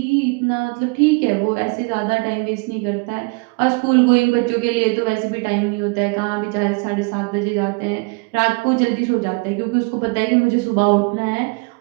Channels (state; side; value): quieter; left; 30.5 dB